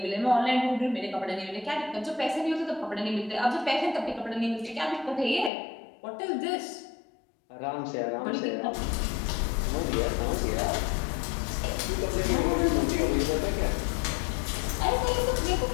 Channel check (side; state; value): right; drops out; at 5.5 s